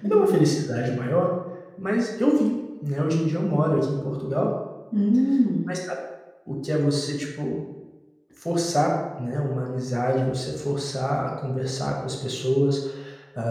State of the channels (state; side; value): identical; both; correlation 1.00